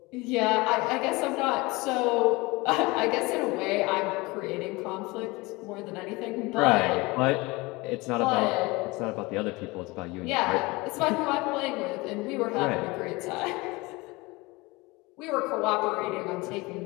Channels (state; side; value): quieter; right; 23.4 dB